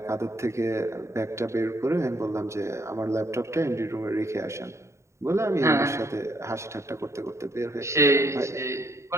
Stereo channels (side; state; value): left; late; 0.14 ms